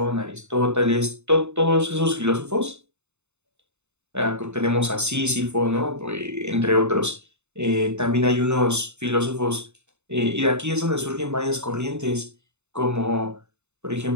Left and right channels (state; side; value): late; left; 0.82 ms